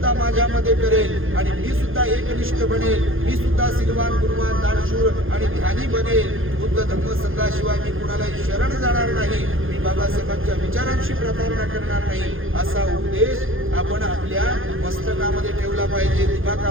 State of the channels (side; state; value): left; late; 0.59 ms